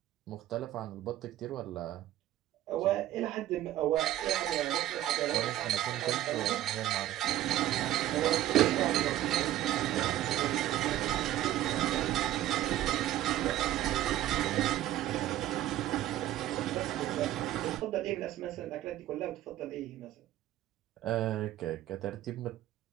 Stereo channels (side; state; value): left; quieter; 13.6 dB